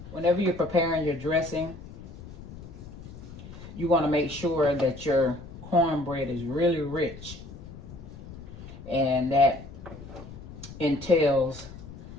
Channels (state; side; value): noise; left; rumble, 14 dB below the sound